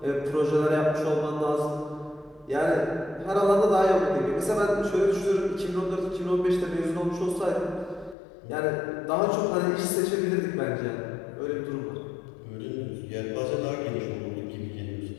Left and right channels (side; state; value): right; drops out; at 8.2 s